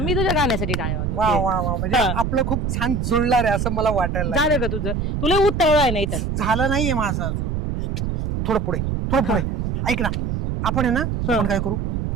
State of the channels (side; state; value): right; noise; rumble, 2 dB below the sound